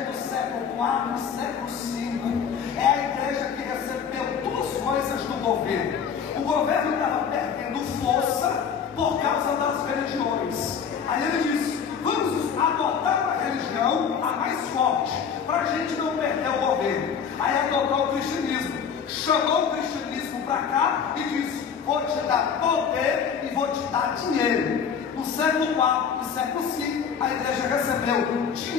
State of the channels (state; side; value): quieter; right; 7.1 dB